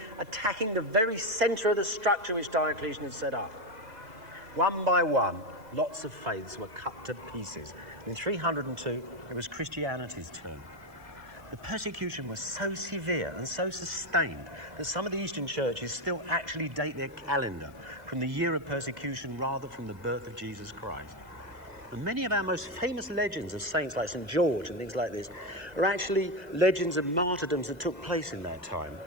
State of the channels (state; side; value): late; left; 2.0 ms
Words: attacking the very center of the structure which Diocletian had set up. One by one, lots of faiths were cut to pieces. In 302, it was Christianity's turn. The persecution was so severe and so sustained that some of the Eastern churches still actually date their calendar from the year of persecution rather from the birth of Jesus Christ. And many of our most famous legends of saints like St. George and things like this are actually legends of martyrdoms that took place in that time.